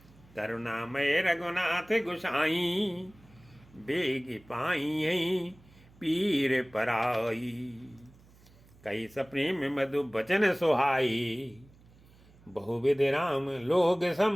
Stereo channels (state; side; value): noise; right; hum, 26 dB below the sound